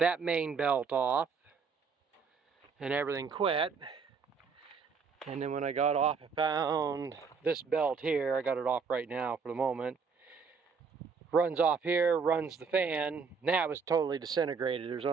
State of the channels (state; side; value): quieter; left; 5.5 dB